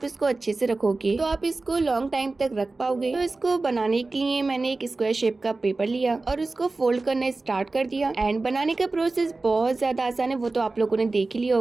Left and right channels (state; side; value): quieter; left; 3.5 dB